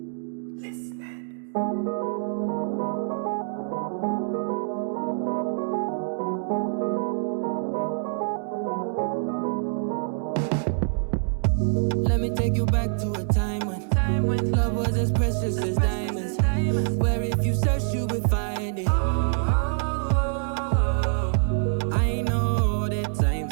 me take you back to a time when love was as precious as diamonds, where if you search you would find it. I know that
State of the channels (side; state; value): left; silent; digital silence